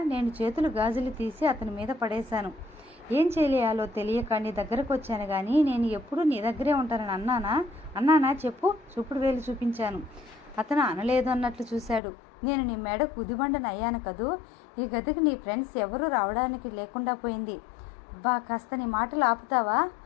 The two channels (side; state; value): right; drops out; at 12.0 s